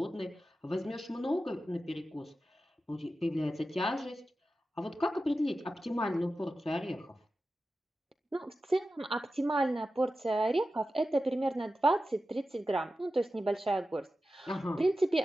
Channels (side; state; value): both; normal; correlation 0.93